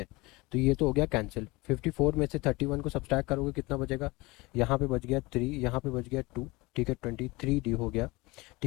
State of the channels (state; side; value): quieter; right; 23.2 dB